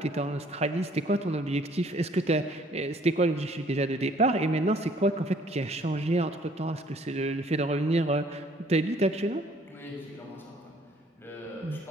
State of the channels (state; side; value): normal; both; correlation 0.59